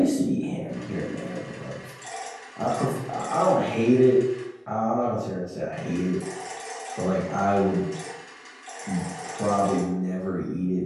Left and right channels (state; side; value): identical; both; correlation 1.00